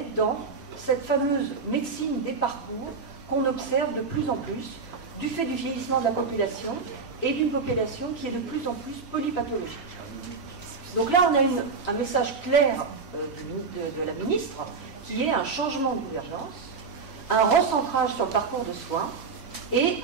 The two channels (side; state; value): left; quieter; 4.9 dB